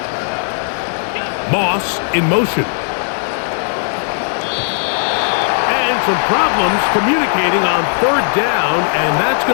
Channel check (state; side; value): silent; right; digital silence